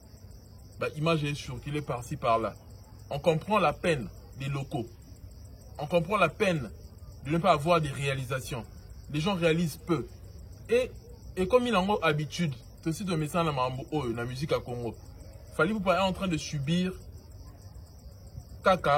Image est surculée par-ci par-là. On comprend la peine des locaux. On comprend la peine de ne pas avoir des réalisations. Les gens réalisent peu. Et comme il en a habitude, c'est aussi de message dans la musique à Congo. Fali pour pas être en train de subir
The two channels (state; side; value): identical; both; correlation 1.00